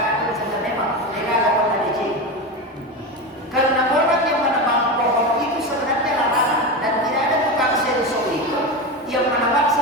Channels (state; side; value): normal; both; correlation 0.20